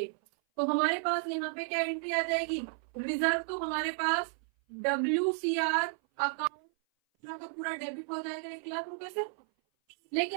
तो हमारे पास यहाँ पे क्या एंट्री आ जाएगी? रिजर्व तो हमारे पास WCR अकाउंट पूरा का पूरा डेबिट हो जाएगा 1,00,000 रुपए से,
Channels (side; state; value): left; silent; 56 dB below the other